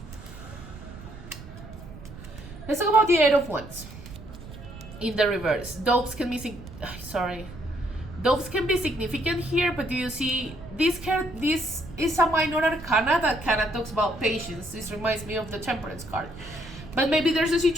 Let's talk about the Eight of Wands in the reverse. Doves can be significant here, but do you see this card? This is a minor arcana that kind of talks about patience. This reminds me of the Temperance card. But maybe there's a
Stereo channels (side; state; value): right; noise; rumble, 15 dB below the sound